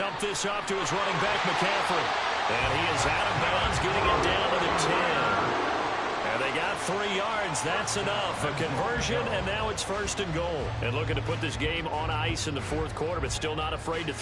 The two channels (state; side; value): identical; both; correlation 1.00